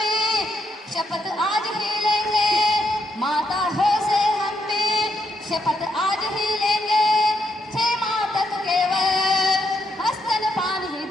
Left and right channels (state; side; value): normal; both; correlation 0.78